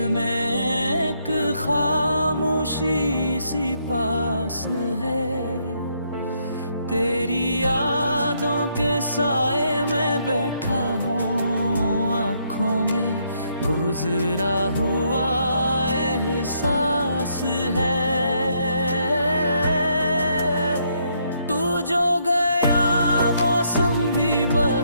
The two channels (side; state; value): both; inverted; correlation -0.73